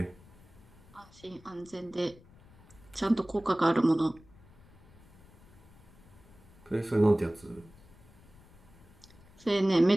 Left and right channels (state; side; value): noise; left; rumble, 24 dB below the sound